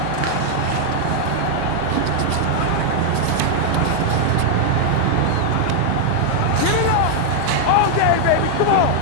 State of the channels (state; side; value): different; both; correlation 0.00